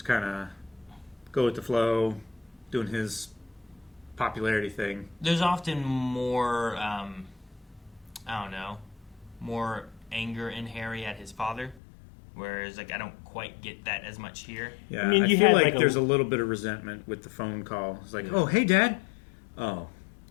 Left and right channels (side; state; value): right; drops out; at 11.8 s